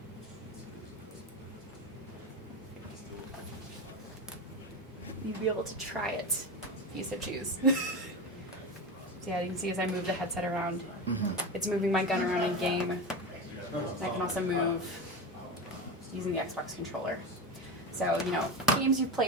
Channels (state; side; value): normal; both; correlation 0.22